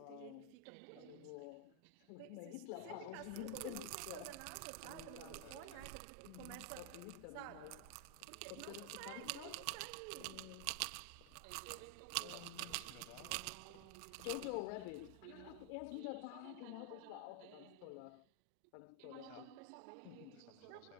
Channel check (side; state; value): both; different; correlation 0.00